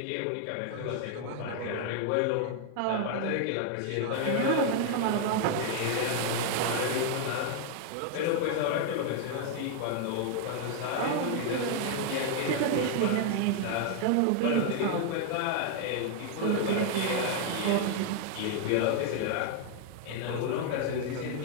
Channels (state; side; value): different; both; correlation 0.00